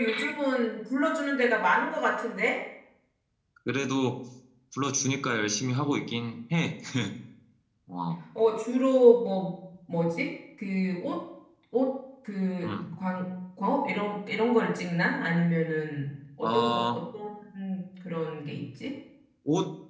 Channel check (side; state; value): both; identical; correlation 1.00